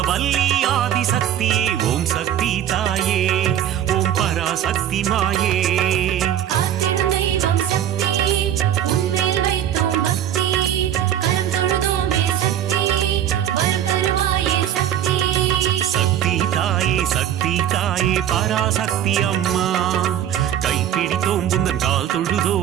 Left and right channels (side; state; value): left; quieter; 10.7 dB